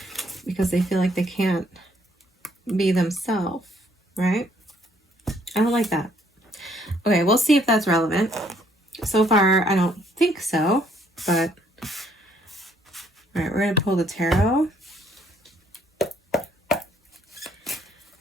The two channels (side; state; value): both; normal; correlation 0.66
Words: because they feel like they can't be themselves, right? I don't like that. Okay, we'll see if that's relevant. So far, I don't think so, but all right, we're going to pull the tarot.